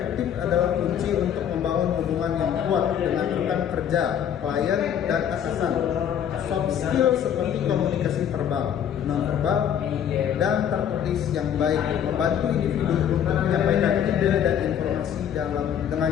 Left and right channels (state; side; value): quieter; right; 9.2 dB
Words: adalah kunci untuk membangun hubungan yang kuat dengan rekan kerja, klien, dan atasan. Soft skill seperti komunikasi verbal, non-verbal, dan tertulis yang baik membantu individu untuk menyampaikan ide dan informasi dengan